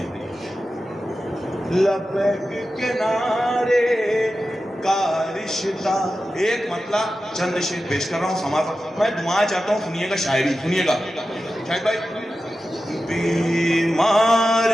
لبیک کنارے کا رشتہ، ایک مطلع چند شعر پیش کر رہا ہوں، سماعت میں دعائیں چاہتا ہوں، سنیے گا شاعری، سنیے گا شاہد بھائی۔ بیمار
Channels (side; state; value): both; normal; correlation 0.93